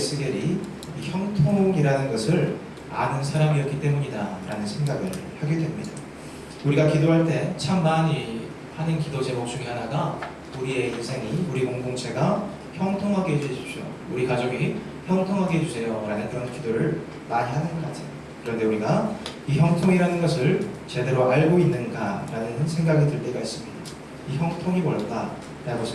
이 형통이라는 것을 아는 사람이었기 때문이다라는 생각을 하게 됩니다. 우리가 기도할 때 참 많이 하는 기도 제목 중에 하나가 우리의 인생이, 우리 공동체가 형통하게 해주십시오. 우리 가족이 형통하게 해주세요. 라는 그런 기도를 많이 하는 것 같아요. 그런데 우리가 이 형통이라는 것을 제대로 알고 있는가라는 생각이 들 때가 있습니다. 이 형통이 뭘까? 라고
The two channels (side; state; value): both; identical; correlation 1.00